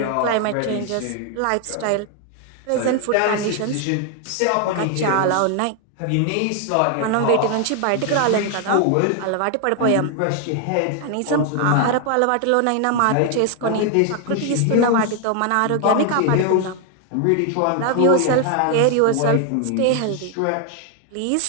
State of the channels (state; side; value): different; both; correlation 0.00